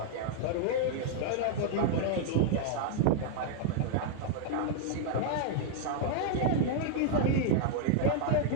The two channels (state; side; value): different; both; correlation -0.01